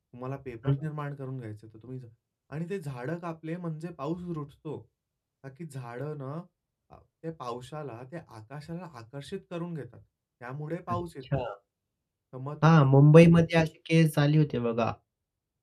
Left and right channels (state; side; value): identical; both; correlation 1.00